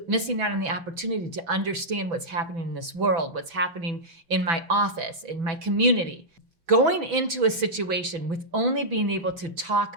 missing out on the opportunity to understand what's happening in this world, what's happening in my office, in my community. Going into a situation with only being able to talk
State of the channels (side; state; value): left; late; 6.0 ms